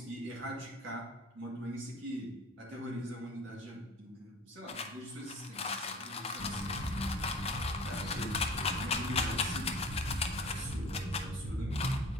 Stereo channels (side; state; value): both; normal; correlation 0.43